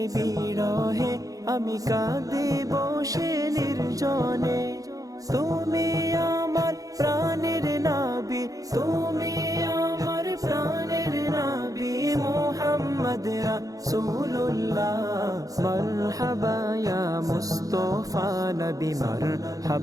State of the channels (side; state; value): left; late; 0.17 ms